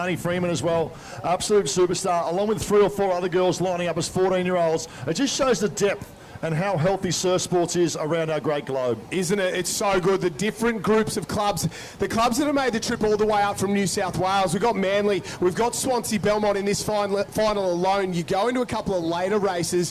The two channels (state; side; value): identical; both; correlation 1.00